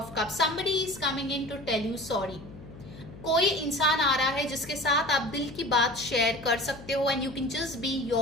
cup, somebody is coming in to tell you sorry. कोई इंसान आ रहा है जिसके साथ आप दिल की बात शेयर कर सकते हो, and you can just be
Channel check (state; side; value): noise; left; hum, 16 dB below the sound